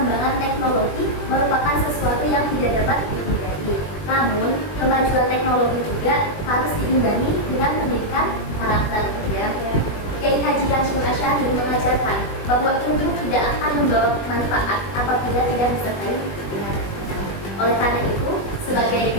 teknologi merupakan sesuatu yang tidak dapat dihindari. Namun, kemajuan teknologi juga harus diimbangi dengan pendidikan karakter. Ya. Kiai Haji Hasyim Asy'ari mengajarkan bahwa ilmu tidak akan membawa manfaat apabila tidak disertai dengan. Oleh karena itu, sebagai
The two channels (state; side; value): late; right; 20 ms